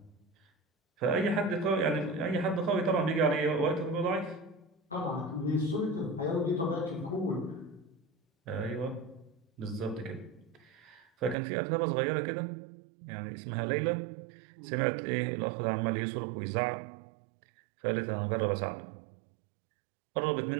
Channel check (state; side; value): drops out; left; at 11.4 s